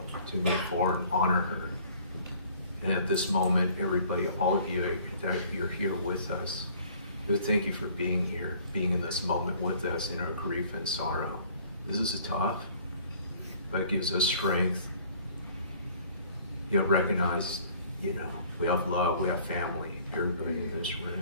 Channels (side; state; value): both; inverted; correlation -0.54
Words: to move forward, honor her. And at this moment, everybody, all of you that you're here with us, we thank you for being here, being in this moment with us in our grief and sorrow. This is tough, but it gives us strength. You know, recognize, you know, we have love, we have family, everybody in this